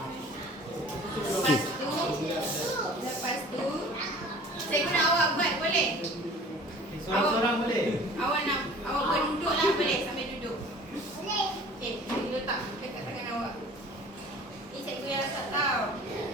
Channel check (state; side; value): normal; both; correlation 0.46